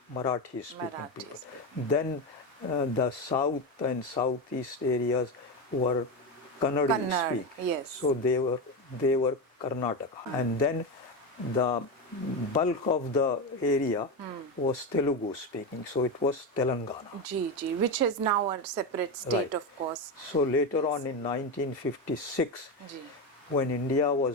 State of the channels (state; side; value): normal; both; correlation 0.15